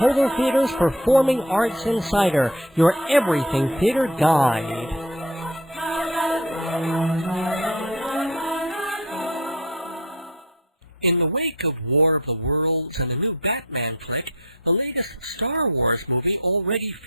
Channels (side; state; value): both; normal; correlation 0.39